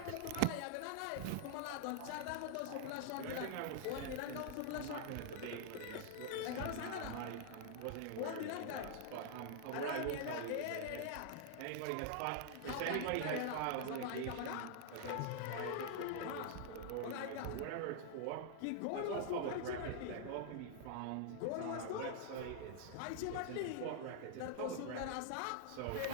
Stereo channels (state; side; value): different; both; correlation 0.00